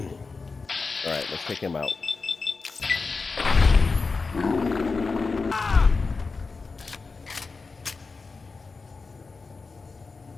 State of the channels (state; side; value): quieter; right; 4.3 dB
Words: Alright, let's take him out.